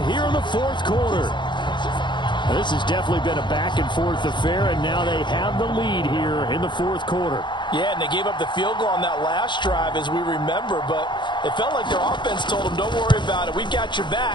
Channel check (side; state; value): right; late; 0.23 ms